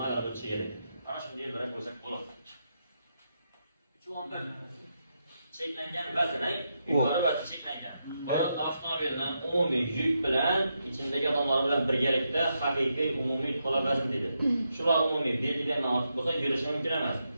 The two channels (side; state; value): both; inverted; correlation -0.83